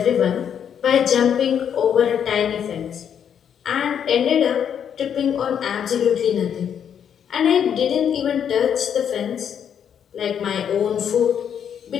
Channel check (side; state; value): right; quieter; 8.4 dB